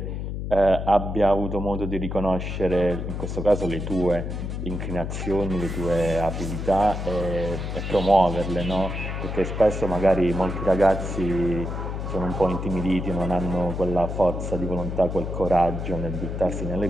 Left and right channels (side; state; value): left; noise; hum, 4 dB below the sound